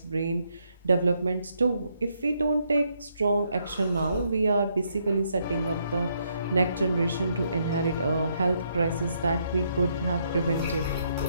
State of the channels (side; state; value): both; inverted; correlation -0.74